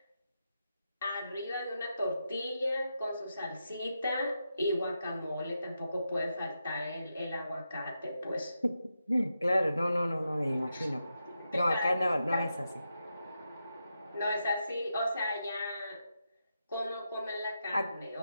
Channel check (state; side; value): inverted; both; correlation -0.86